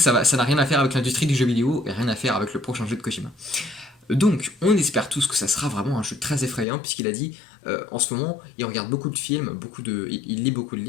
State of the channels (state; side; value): drops out; right; at 6.7 s